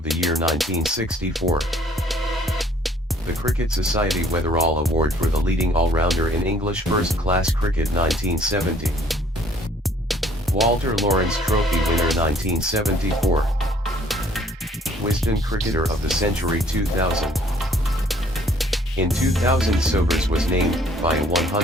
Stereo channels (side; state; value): both; normal; correlation 0.59